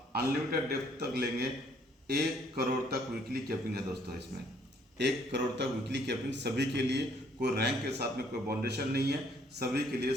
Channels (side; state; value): both; normal; correlation 0.64